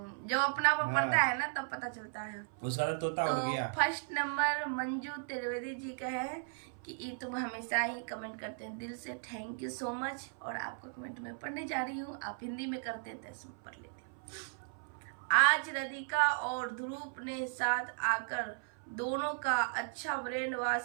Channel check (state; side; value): silent; left; 54 dB below the other